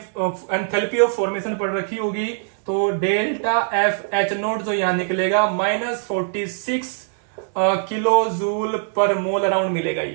ऑफ फॉर्मेशन पढ़ रखी होगी, तो डेल्टा FH0 जो यहां निकलेगा -46 किलो जूल पर मोल अराउंड मिलेगा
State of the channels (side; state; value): left; silent; digital silence